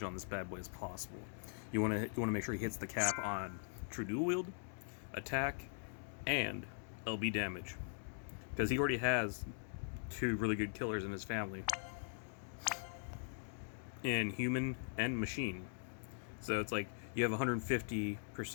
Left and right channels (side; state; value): right; silent; digital silence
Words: on this bad boy as possible. You want to make sure he hits the cap on true dual wield, attack, and LB damage, because he already has 2 really good killers in his family, in human and machine. So it's like you have